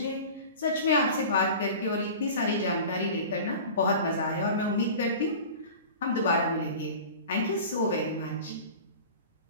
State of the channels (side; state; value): both; inverted; correlation -0.37